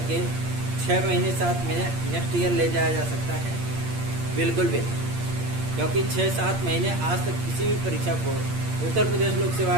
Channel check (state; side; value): late; left; 8.6 ms